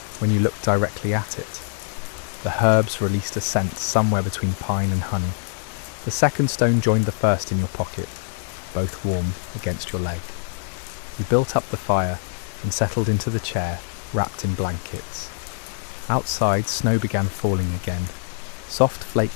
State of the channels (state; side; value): silent; right; digital silence